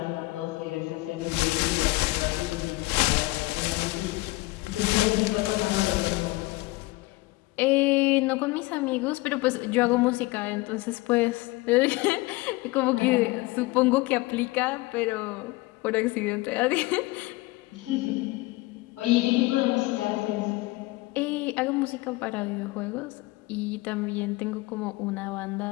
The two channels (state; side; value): quieter; right; 21.5 dB